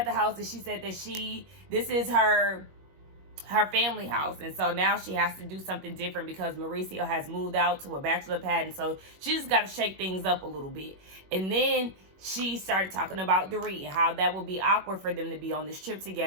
the house, and she said that this is her family house, and so now she has to do something different because Mauricio has moved out to a bachelor pad, and so she just got to shake things up a little bit. And then she started talking about Dorit and how that would be awkward for them to be on this trip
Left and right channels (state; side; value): late; left; 21 ms